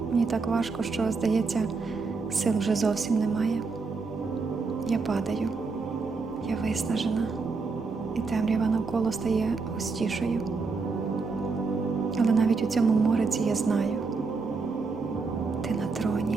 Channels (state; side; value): quieter; left; 4.4 dB